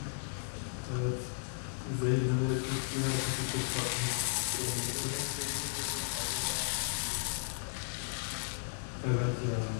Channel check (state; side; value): silent; right; 55 dB below the other